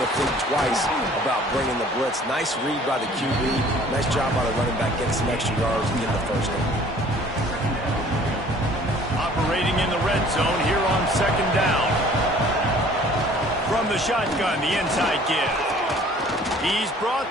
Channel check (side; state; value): both; normal; correlation 0.53